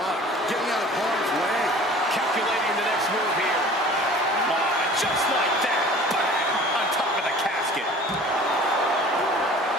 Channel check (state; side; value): normal; both; correlation 0.46